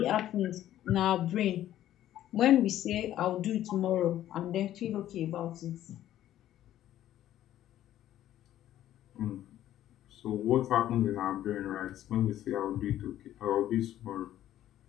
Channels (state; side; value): quieter; right; 12.6 dB